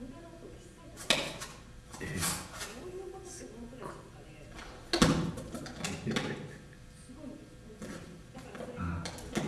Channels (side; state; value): both; identical; correlation 1.00